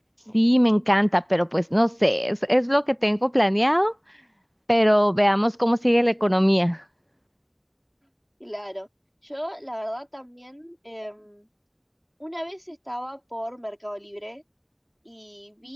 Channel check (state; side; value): identical; both; correlation 1.00